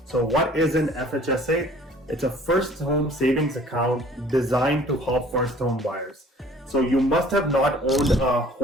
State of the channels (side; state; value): both; normal; correlation 0.52